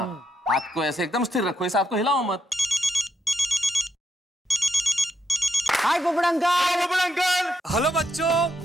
हाथ को ऐसे एकदम स्थिर रखो, इस हाथ को हिलाओ मत। हाय पोपड़ अंकल। पोपड़ अंकल। हेलो बच्चों,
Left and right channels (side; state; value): both; normal; correlation 0.80